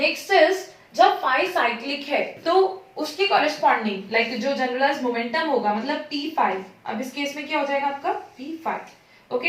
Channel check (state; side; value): identical; both; correlation 1.00